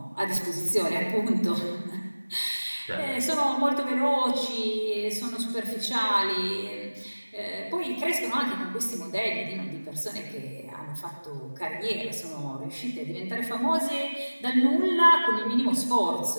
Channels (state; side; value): inverted; both; correlation -1.00